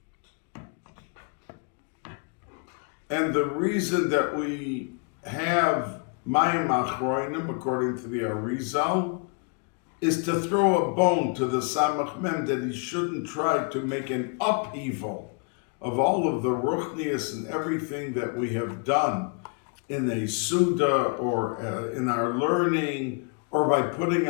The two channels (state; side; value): quieter; right; 37.5 dB